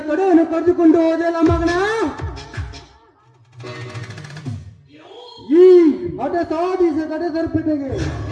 ಕಡೆಯನ್ನು ಕರೆದುಕೊಂಡು ಹೋದೆಲ್ಲ ಮಗನ. ಈ ಹಠ ಸಾಧಿಸ ಕಡೆ ಸರ್ಪಿಟೆಗೆ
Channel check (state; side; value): identical; both; correlation 1.00